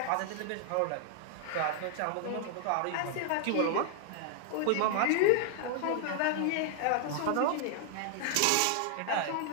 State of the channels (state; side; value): different; both; correlation 0.00